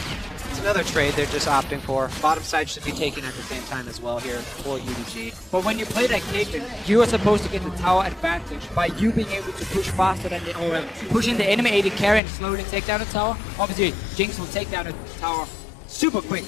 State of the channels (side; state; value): right; drops out; at 12.2 s